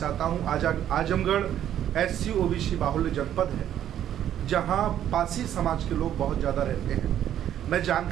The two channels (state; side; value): quieter; left; 10.9 dB